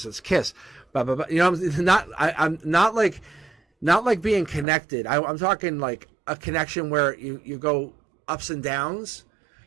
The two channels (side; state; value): left; drops out; at 4.7 s